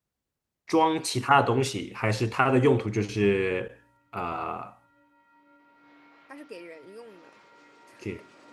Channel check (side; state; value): both; identical; correlation 1.00